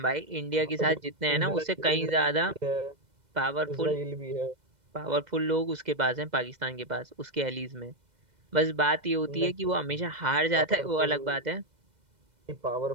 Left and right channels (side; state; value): left; late; 2.0 ms